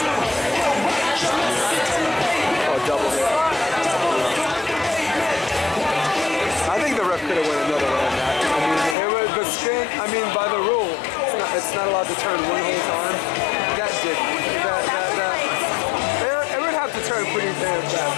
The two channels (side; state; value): right; drops out; at 9.0 s